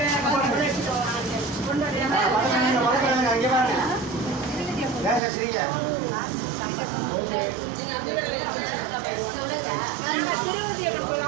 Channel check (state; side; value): drops out; left; at 5.2 s